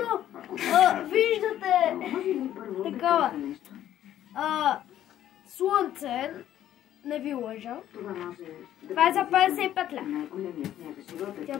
виждате такова слънце, не ви лъжа. Това е за 55 лева. Тя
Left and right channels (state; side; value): quieter; right; 11.8 dB